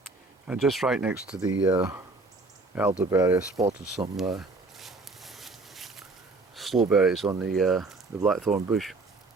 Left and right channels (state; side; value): quieter; left; 3.4 dB